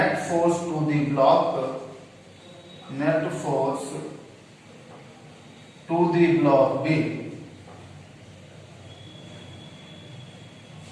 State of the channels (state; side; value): identical; both; correlation 1.00